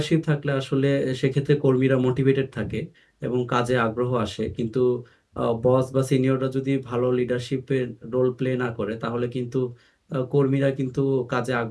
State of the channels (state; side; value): identical; both; correlation 1.00